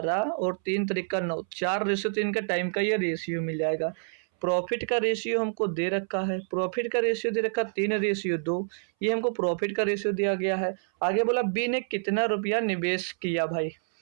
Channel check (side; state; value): left; silent; 60 dB below the other